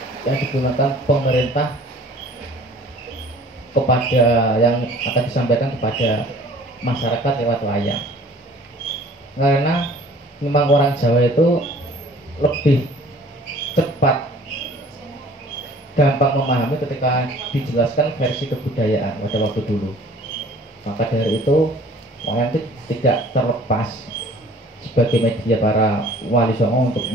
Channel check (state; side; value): normal; both; correlation 0.50